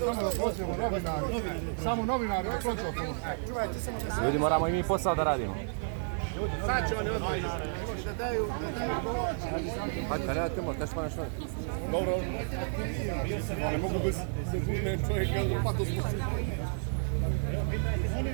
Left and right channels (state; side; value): silent; left; digital silence